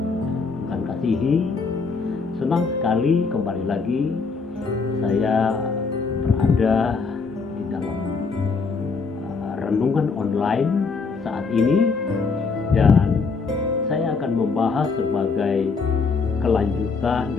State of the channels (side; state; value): right; quieter; 4.7 dB